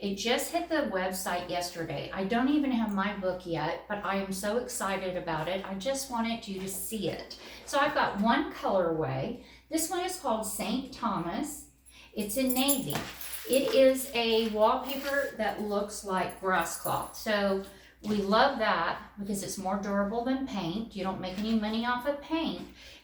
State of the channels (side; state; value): both; identical; correlation 1.00